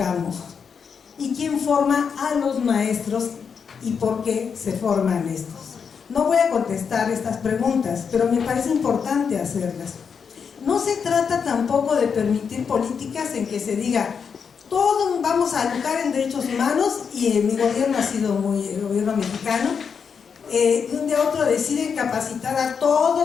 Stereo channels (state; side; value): quieter; right; 6.4 dB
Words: ¿Y quién forma a los maestros? ¿Y por qué se forman estos? No voy a contestar estas preguntas, pero me parece importante hacerlas. No se trata tampoco de permitir políticas en que se diga todos vamos a educar en derechos humanos, y mi gobierno ha sido el gobierno mexicano, de un día a otro deciden capacitar a